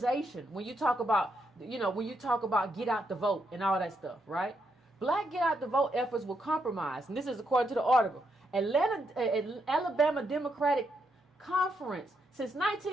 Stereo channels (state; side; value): normal; both; correlation 0.80